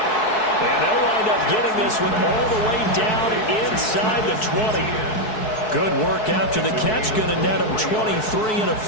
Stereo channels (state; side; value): late; right; 4.6 ms